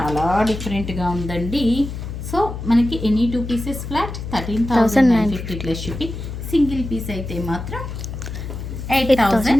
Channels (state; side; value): noise; left; hum, 8 dB below the sound